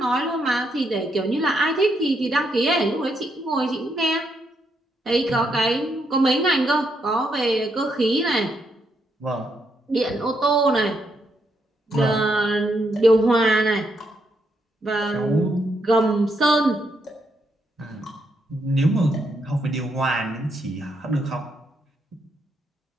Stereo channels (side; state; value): both; normal; correlation 0.77